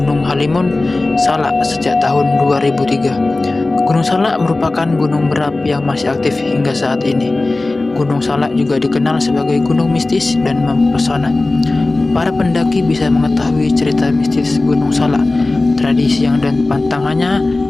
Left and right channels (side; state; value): right; quieter; 3.1 dB